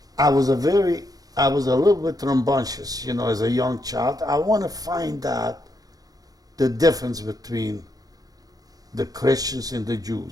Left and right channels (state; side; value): late; left; 0.18 ms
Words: I was a little bit rambunctious, as a young child. I want to find out the difference between the Christians and the